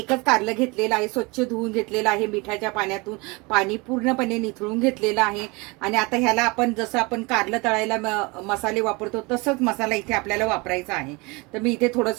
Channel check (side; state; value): left; quieter; 26.6 dB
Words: कारलं घेतलेलं आहे, स्वच्छ धुवून घेतलेलं आहे, मिठाच्या पाण्यातून पाणी पूर्णपणे निथळून घेतलेलं आहे. आणि आता ह्याला आपण जसं आपण कारलं तळायला मसाले वापरतो तसंच मसाला इथे आपल्याला वापरायचा आहे. तर मी इथे